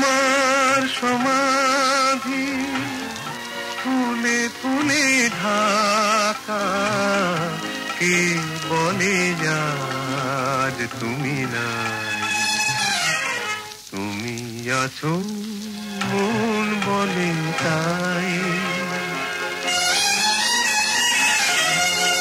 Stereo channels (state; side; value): identical; both; correlation 1.00